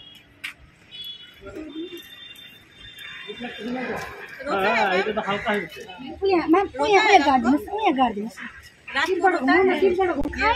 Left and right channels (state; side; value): identical; both; correlation 1.00